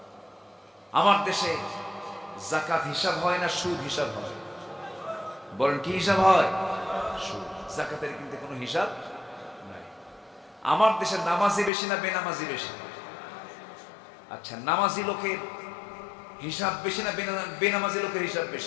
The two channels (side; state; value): right; drops out; at 11.7 s